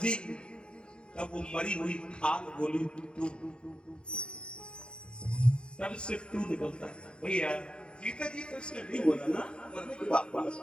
तब वो मरी हुई खाल बोली टू, तब से टू निकलता है। भैया जीता जी तो इसने नहीं बोला ना, मरने की बात बोला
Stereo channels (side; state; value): right; late; 0.053 ms